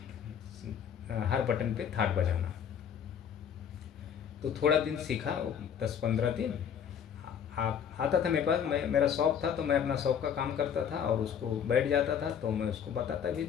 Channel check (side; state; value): right; quieter; 8.2 dB